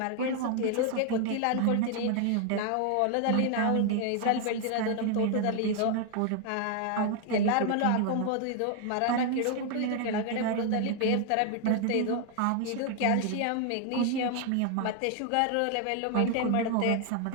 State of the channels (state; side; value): different; both; correlation 0.00